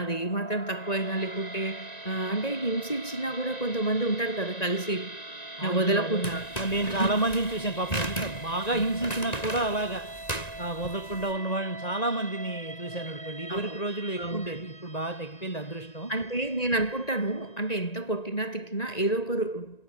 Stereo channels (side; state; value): right; late; 1.9 ms